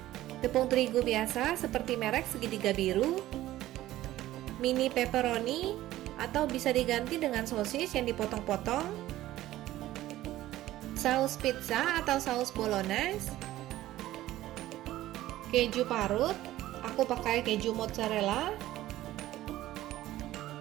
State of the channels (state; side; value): quieter; left; 15.0 dB